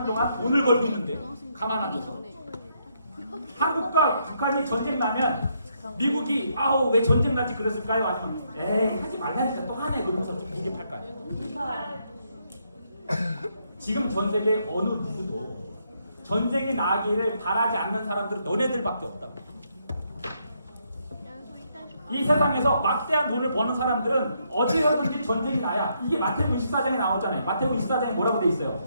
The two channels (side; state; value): both; inverted; correlation -0.75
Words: 동안 돈을 벌고 있는데 가만 앉아서 한국과 북한이 전쟁 나면 미국이 아우 왜 전쟁 났지 그랬을까요? 아니면 에이 하지 말라니까 또 하네 그러면서 좀 무게 팔까요? 지금 전 세계 어느 누구도 전쟁이 나기를 바라지 않는 사람들은 너네들밖에 없다고. 이 세상에서 막대한 돈을 버는 사람들은 어디서든지 전쟁이 나야. 이게 마태복음 24장에 나오잖아요. 마태복음 24장에 뭐라고 돼 있어요?